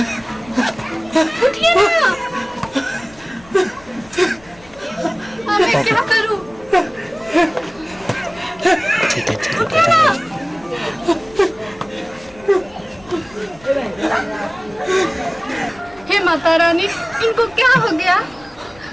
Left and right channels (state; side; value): noise; left; rumble, 25 dB below the sound